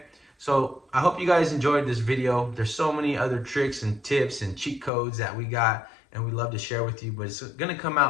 So I hope you guys enjoyed this video. There's so many other tricks and tips and cheat codes that we got, and we love to share with you, but it's gonna come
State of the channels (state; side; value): drops out; right; at 4.9 s